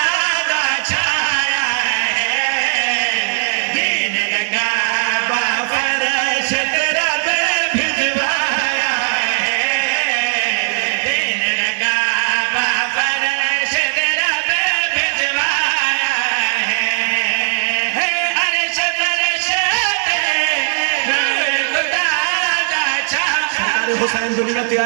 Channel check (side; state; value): left; silent; digital silence